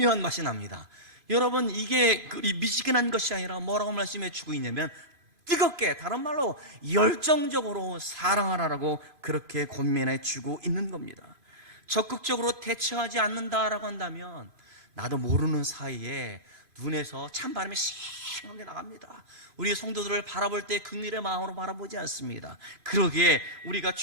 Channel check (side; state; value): left; late; 2.5 ms